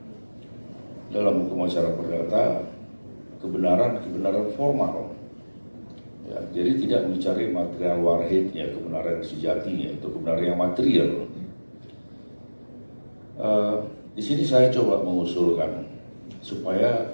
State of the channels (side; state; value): both; inverted; correlation -1.00